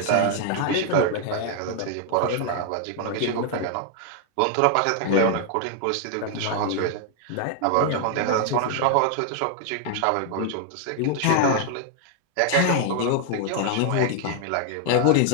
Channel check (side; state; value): both; different; correlation 0.00